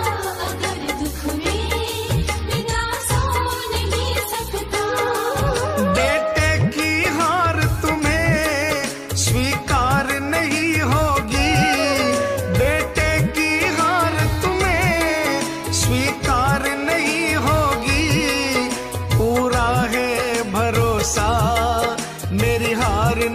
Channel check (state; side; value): identical; both; correlation 1.00